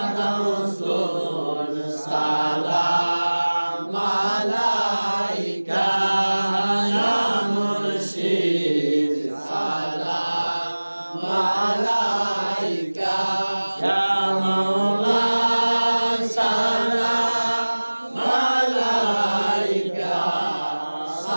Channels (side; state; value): both; inverted; correlation -1.00